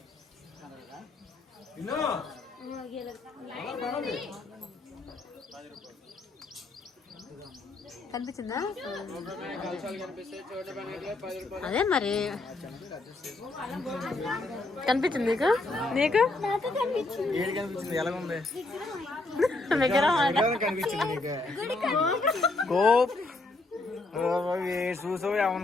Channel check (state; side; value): quieter; right; 3.1 dB